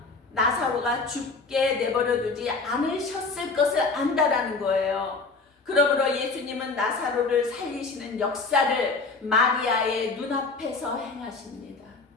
나사로가 죽게 내버려두지 않으셨을 것을 안다라는 거예요. 그러므로 예수님은 나사로를 살리시는 역사를 마리아의 눈앞에서 행하십니다.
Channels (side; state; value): right; quieter; 4.0 dB